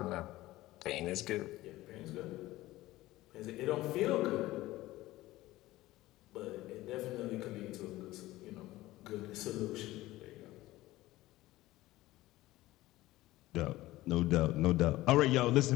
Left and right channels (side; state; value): right; quieter; 17.3 dB